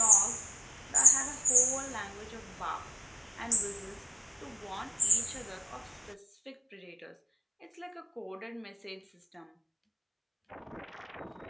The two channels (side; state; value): both; identical; correlation 1.00